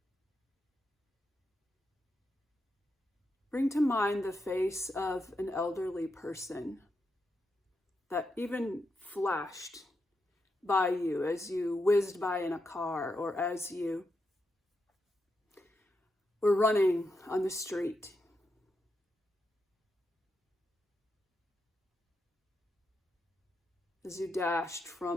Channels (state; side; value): normal; both; correlation 0.85